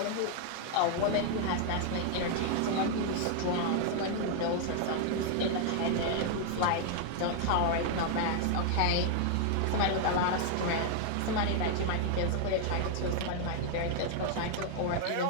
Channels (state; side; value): different; both; correlation 0.00